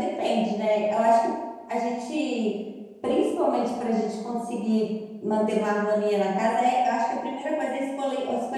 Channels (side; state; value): both; identical; correlation 1.00